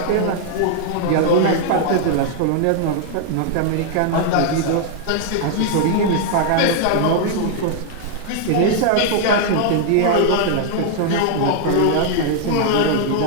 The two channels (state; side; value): different; both; correlation 0.00